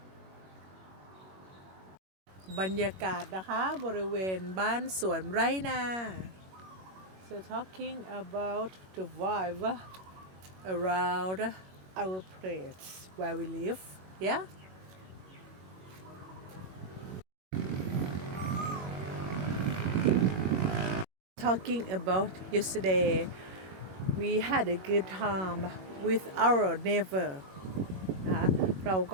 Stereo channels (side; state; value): left; late; 21 ms